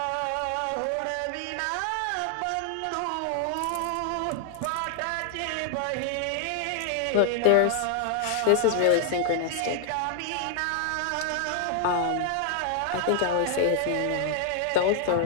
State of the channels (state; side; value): different; both; correlation 0.00